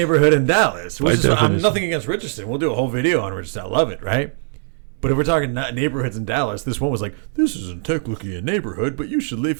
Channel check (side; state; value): left; silent; digital silence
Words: in Dallas. Which is, I'm nothing against Richardson. We'll do a whole video on Richardson. I love it, right? But if we're talking not neighborhoods in Dallas, this one was like, this isn't technically a neighborhood, but you should